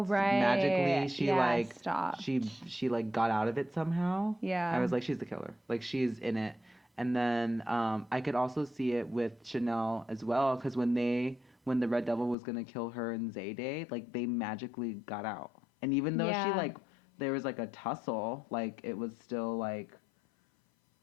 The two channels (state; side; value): drops out; right; at 12.4 s